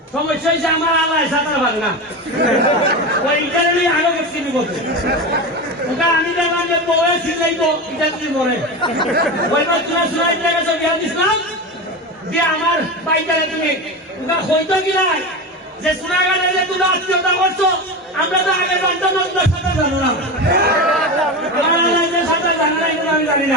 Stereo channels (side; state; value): both; normal; correlation 0.22